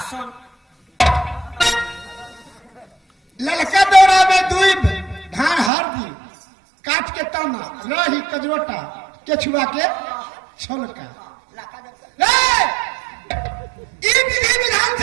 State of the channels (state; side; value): drops out; left; at 5.7 s